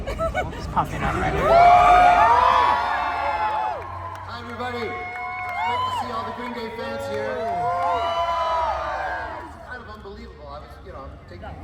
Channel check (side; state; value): both; identical; correlation 1.00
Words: Just popping up right here. Hi, everybody. Great to see all the Green Day fans here. It's kind of unbelievable. I was, I'm taking